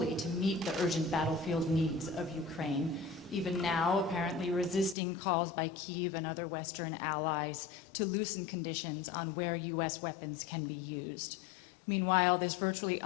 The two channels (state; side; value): drops out; right; at 5.0 s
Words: to meet the urgent battlefield needs of Ukraine, even now apparently resisting calls by Kyiv and other Western allies to loosen conditions on where U.S. weapons can be used. Meanwhile, this virtually